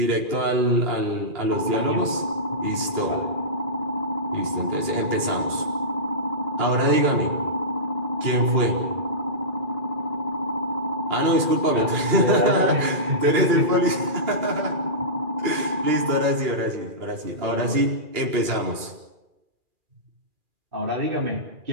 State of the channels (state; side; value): late; left; 2.4 ms